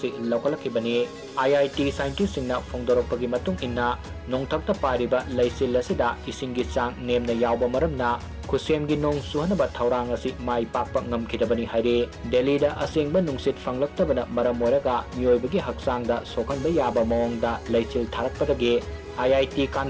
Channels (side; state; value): both; identical; correlation 1.00